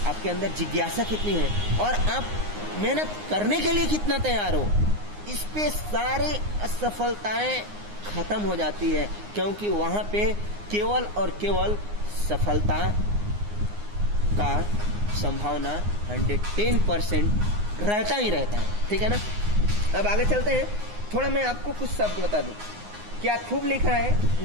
आपके अंदर जिज्ञासा कितनी है और आप मेहनत करने के लिए कितना तैयार हो, इस पे सारी असफलताएं खत्म हो जाती है, क्योंकि वहाँ पे केवल और केवल सफलता का संभावना 110% रहता ही रहता है। ठीक है ना? अब आगे चलते हैं। थोड़ा मैं आपको कुछ शब्द बता दूं। क्या खूब लिखा है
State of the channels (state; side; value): late; left; 9.7 ms